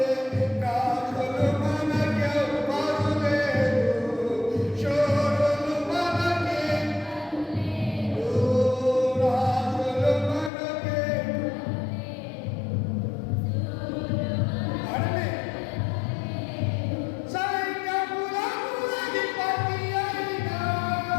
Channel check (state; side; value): drops out; right; at 10.5 s